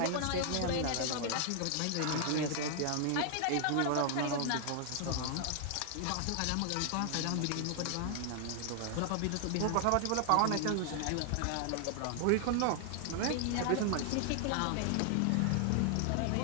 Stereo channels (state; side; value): different; both; correlation 0.00